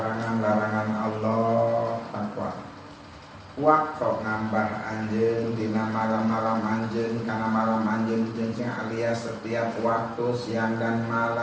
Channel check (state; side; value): identical; both; correlation 1.00